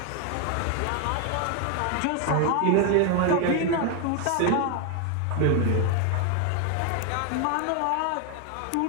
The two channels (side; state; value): both; different; correlation 0.01